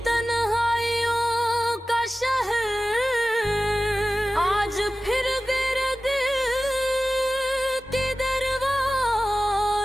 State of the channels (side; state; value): both; normal; correlation 0.96